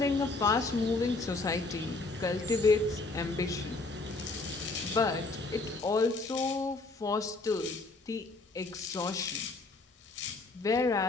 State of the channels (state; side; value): quieter; right; 3.4 dB